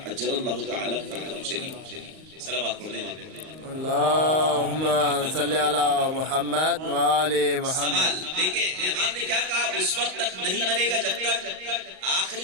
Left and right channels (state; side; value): late; left; 38 ms